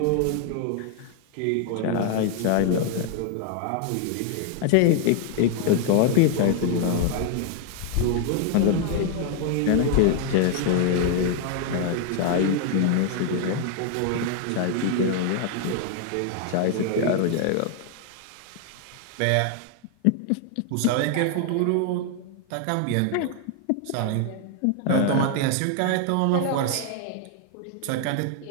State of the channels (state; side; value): different; both; correlation 0.00